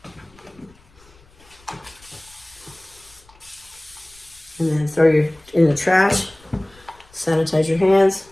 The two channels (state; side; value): noise; left; rumble, 28 dB below the sound